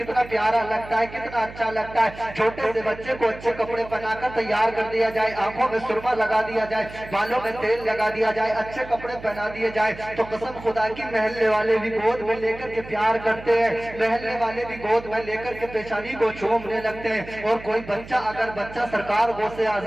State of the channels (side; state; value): right; noise; hum, 16 dB below the sound